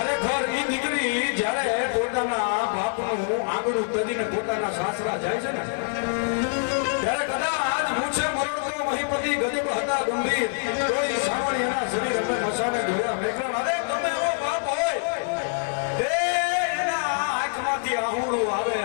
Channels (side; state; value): right; silent; digital silence